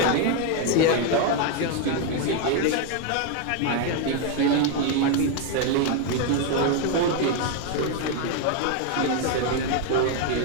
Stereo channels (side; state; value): both; different; correlation 0.01